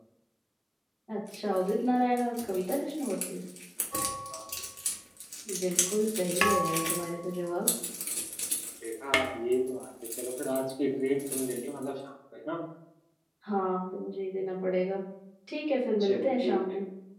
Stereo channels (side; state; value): both; identical; correlation 1.00